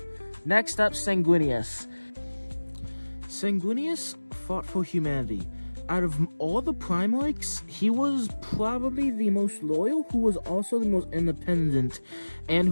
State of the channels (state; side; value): inverted; both; correlation -1.00